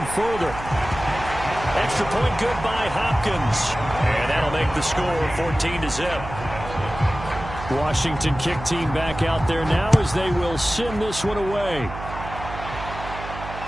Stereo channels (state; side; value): noise; right; hum, 11 dB below the sound